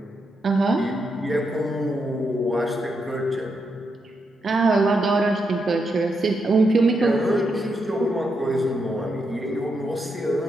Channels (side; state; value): both; normal; correlation 0.82